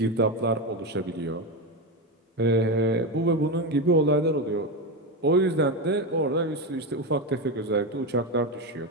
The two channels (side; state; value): both; normal; correlation 0.14